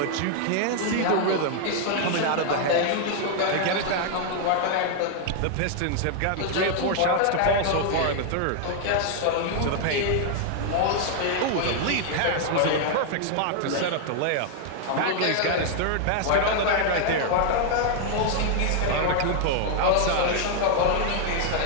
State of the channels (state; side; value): different; both; correlation 0.00